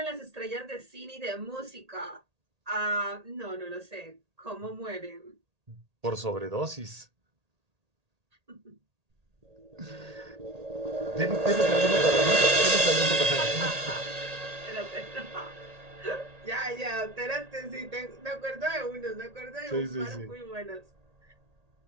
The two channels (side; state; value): left; late; 1.8 ms